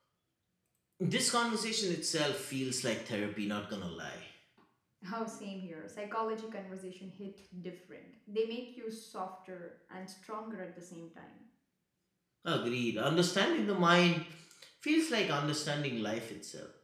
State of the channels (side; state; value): both; identical; correlation 1.00